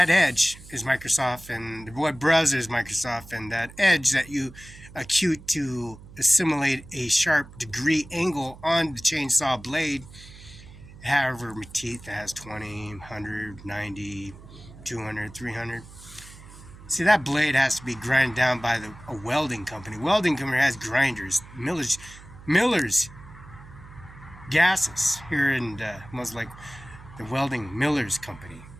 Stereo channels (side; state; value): right; noise; hum, 19 dB below the sound